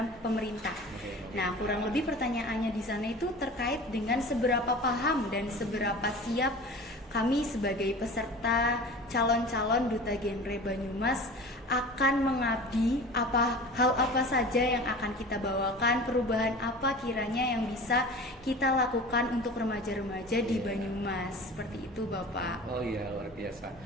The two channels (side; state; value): both; normal; correlation 0.38